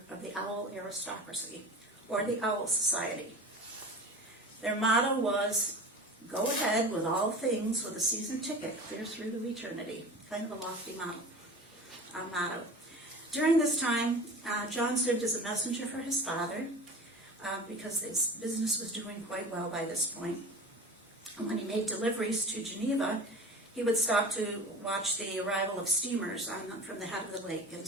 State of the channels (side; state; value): both; normal; correlation 0.36